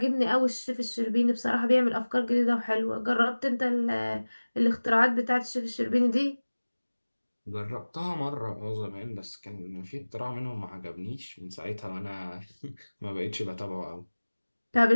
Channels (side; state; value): both; inverted; correlation -1.00